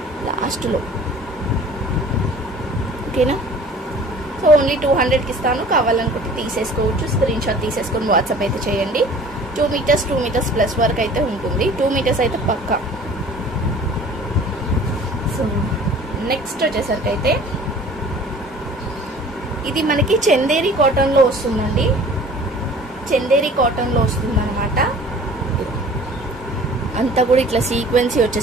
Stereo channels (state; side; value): normal; both; correlation 0.47